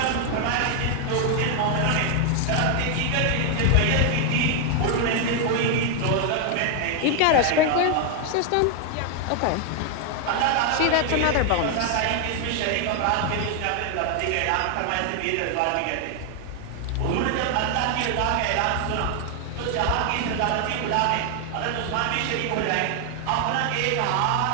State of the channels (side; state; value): both; different; correlation 0.00